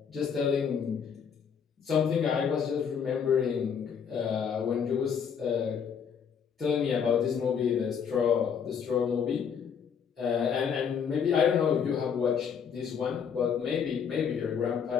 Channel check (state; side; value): quieter; right; 7.2 dB